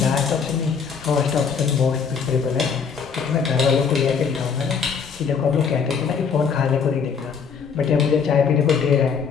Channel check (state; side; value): quieter; right; 6.2 dB